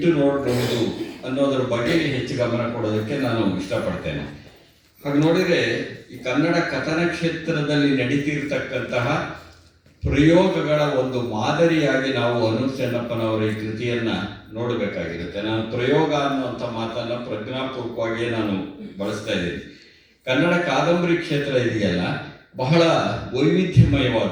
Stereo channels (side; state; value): both; identical; correlation 1.00